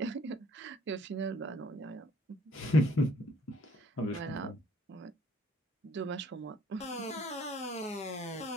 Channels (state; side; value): normal; both; correlation 0.61